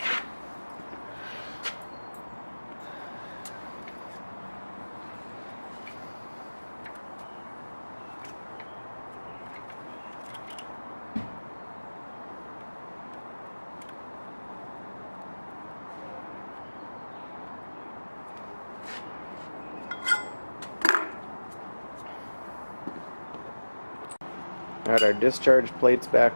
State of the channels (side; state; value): both; inverted; correlation -1.00